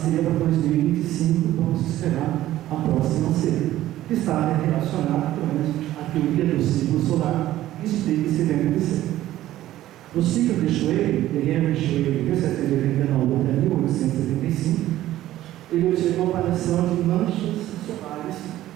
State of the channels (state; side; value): quieter; left; 14.2 dB